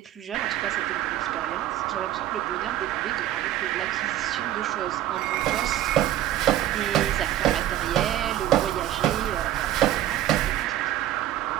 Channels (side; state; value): left; quieter; 13.0 dB